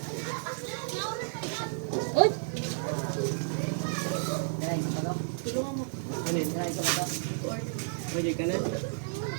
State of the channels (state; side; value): silent; left; digital silence